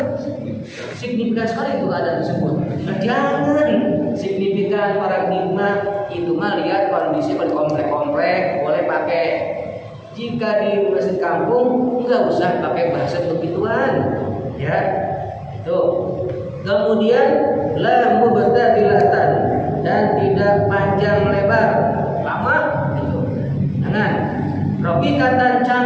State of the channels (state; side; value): identical; both; correlation 1.00